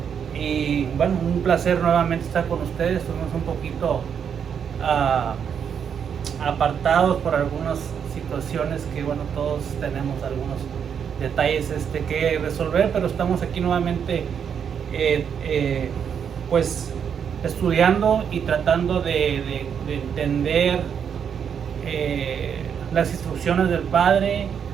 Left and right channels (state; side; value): quieter; left; 7.6 dB